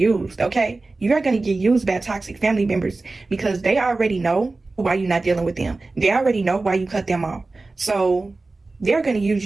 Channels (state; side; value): quieter; left; 3.4 dB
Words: okay? You are going to get used by toxic family members, because they already know why you're not dealing with them. They already know why you cut them off. So they're going to use